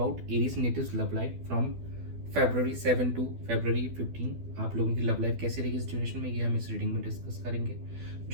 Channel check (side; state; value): left; late; 12 ms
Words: Aries natives love life from February 7 to February 15। आप लोगों की love life कैसे रहेगी इस duration में, ये हम इस रीडिंग में डिस्कस करेंगे।